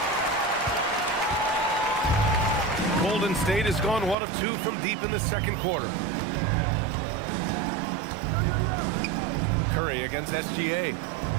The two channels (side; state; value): left; drops out; at 4.2 s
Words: Golden State has gone 1 of 2 from deep in the second quarter. Curry against SGA.